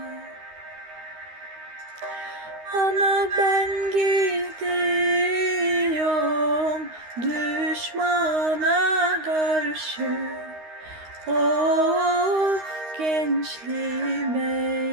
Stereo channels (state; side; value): late; left; 13 ms